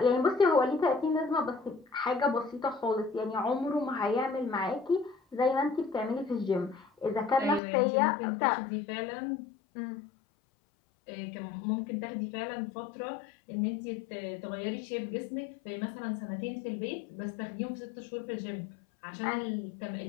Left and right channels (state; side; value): drops out; right; at 7.6 s